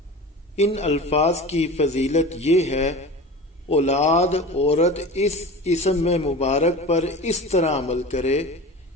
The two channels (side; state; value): both; normal; correlation 0.33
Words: ان الفاظ کی فضیلت یہ ہے، اولاد عورت اس اسم میں مبارک پر اس طرح عمل کرے